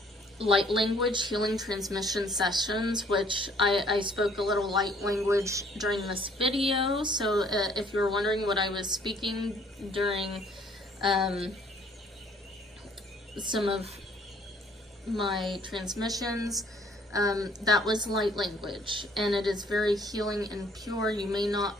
light language healing transmission sessions, which I spoke a little light language during this video. So if you were wondering what I was speaking during some of my transmissions, that was light language, and it is very healing and pure. You may not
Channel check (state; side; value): normal; both; correlation 0.60